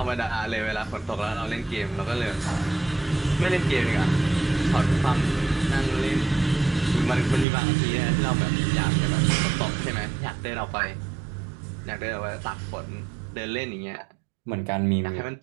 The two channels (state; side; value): drops out; left; at 7.5 s